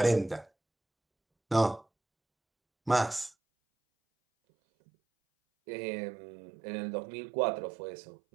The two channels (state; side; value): drops out; left; at 3.3 s